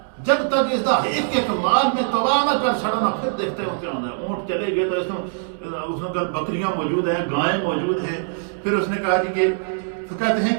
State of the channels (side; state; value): left; silent; digital silence